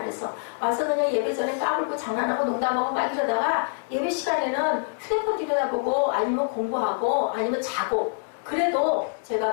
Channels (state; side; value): silent; right; digital silence